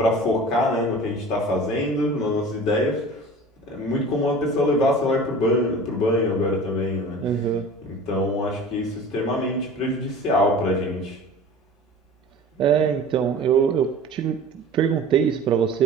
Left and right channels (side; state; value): both; normal; correlation 0.40